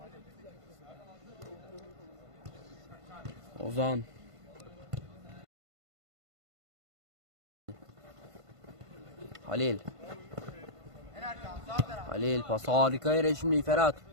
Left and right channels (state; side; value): late; left; 1.5 ms